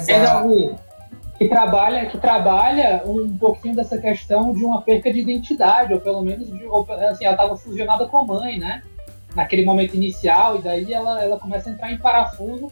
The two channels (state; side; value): inverted; both; correlation -1.00